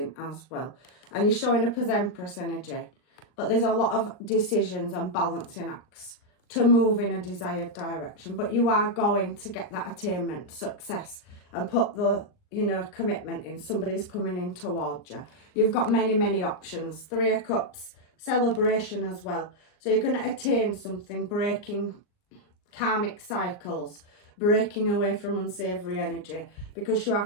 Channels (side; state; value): right; late; 39 ms